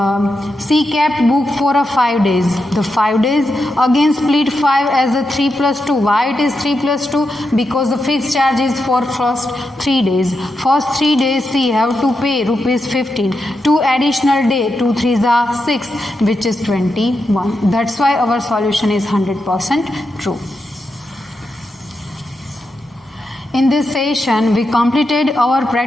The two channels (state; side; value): normal; both; correlation 0.86